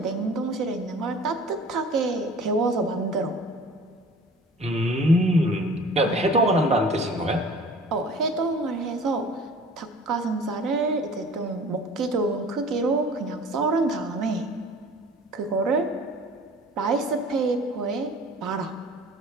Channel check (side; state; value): both; normal; correlation 0.46